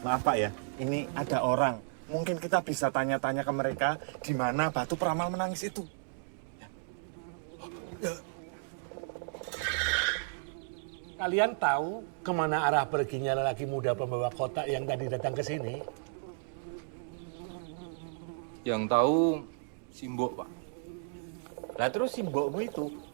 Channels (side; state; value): left; silent; digital silence